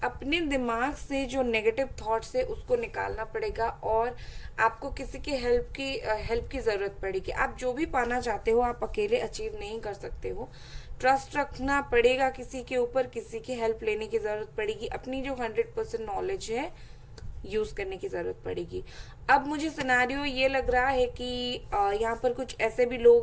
अपने दिमाग से जो नेगेटिव थॉट्स है उसको निकालना पड़ेगा, और आपको किसी की हेल्प की जरूरत पड़ेगी। आप जो भी पाना चाहते हो आप अकेले अचीव नहीं कर सकते हो। ट्रस्ट रखना पड़ेगा किसी के ऊपर, किसी की हेल्प लेने की जरूरत पड़ेगी। अपनी जो 100% नॉलेज है यूज करने की जरूरत पड़ेगी। अब मुझे सिनेरियो ये लग रहा है कि यहाँ पर कुछ ऐसे भी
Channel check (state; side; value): identical; both; correlation 1.00